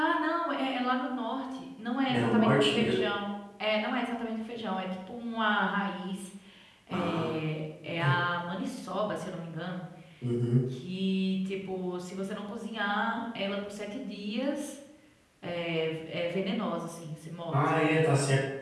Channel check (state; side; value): identical; both; correlation 1.00